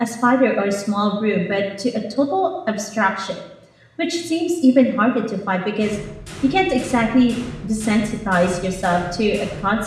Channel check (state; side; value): identical; both; correlation 1.00